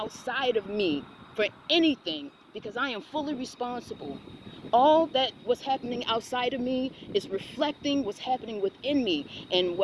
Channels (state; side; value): identical; both; correlation 1.00